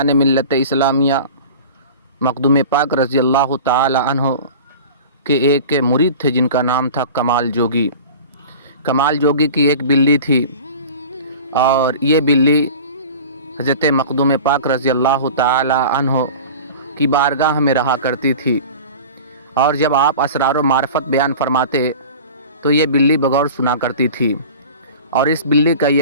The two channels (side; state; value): both; inverted; correlation -0.37